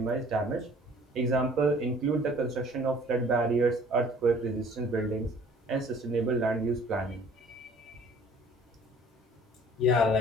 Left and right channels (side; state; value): both; normal; correlation 0.53